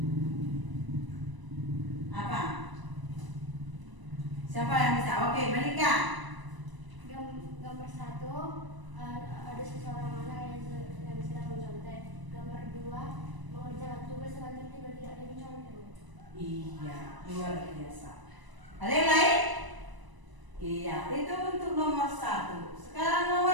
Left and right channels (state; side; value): late; left; 1.0 ms